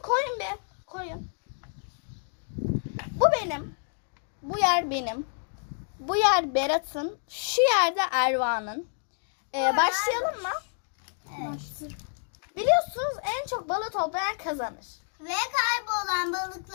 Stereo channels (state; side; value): silent; right; digital silence